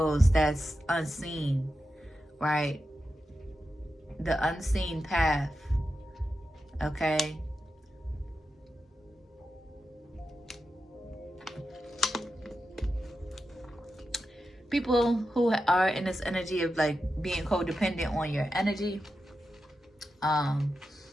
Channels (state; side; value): normal; both; correlation 0.89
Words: that's unseen, right? The unseen path, okay? People who are in this energy of like being codependent on your energy,